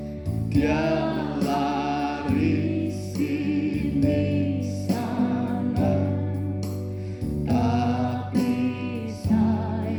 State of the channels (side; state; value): both; identical; correlation 1.00